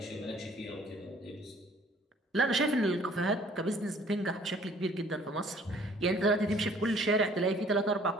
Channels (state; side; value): normal; both; correlation 0.56